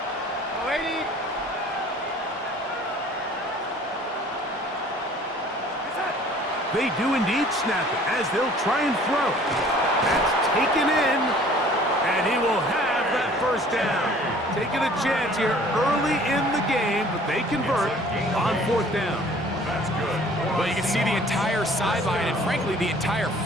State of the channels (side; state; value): both; normal; correlation 0.52